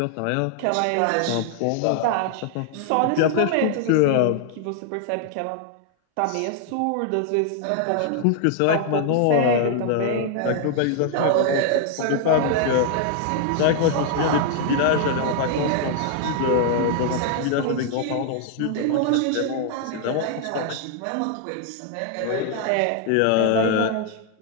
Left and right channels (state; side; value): different; both; correlation 0.00